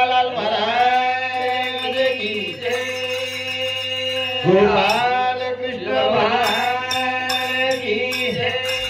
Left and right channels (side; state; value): both; identical; correlation 1.00